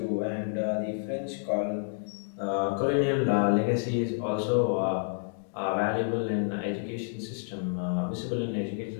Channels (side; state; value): right; silent; digital silence